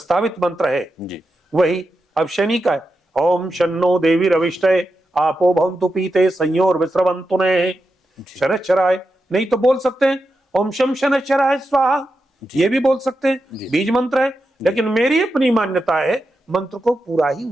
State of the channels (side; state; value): both; normal; correlation 0.88